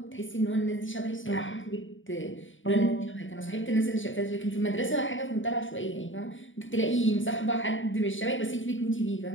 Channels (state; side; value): late; right; 0.57 ms